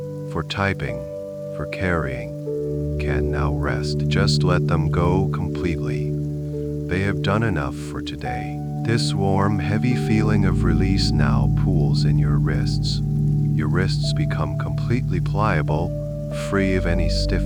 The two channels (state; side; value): identical; both; correlation 1.00